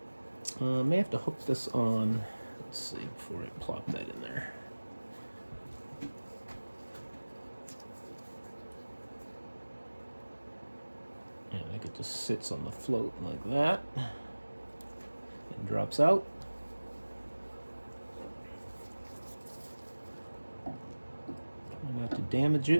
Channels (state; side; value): inverted; both; correlation -1.00